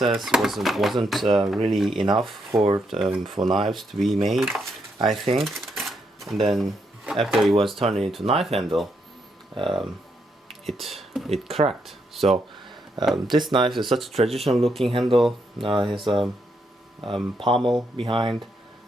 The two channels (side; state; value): both; normal; correlation 0.78